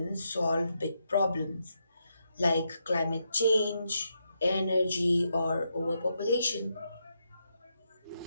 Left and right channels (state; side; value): inverted; both; correlation -0.82